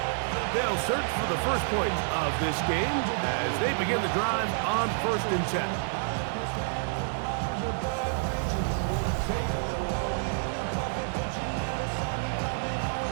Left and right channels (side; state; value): left; silent; digital silence